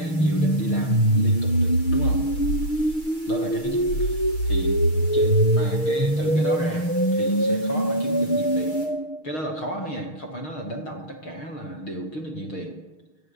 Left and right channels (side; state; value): right; late; 6.4 ms